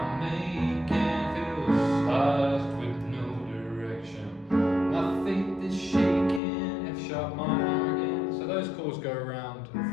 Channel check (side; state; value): right; drops out; at 6.4 s